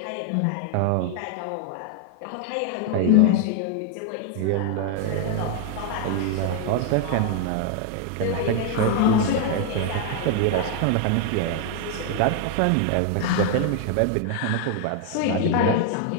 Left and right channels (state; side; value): different; both; correlation 0.00